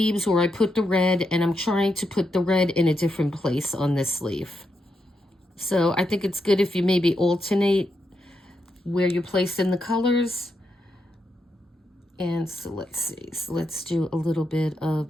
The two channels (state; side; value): normal; both; correlation 0.83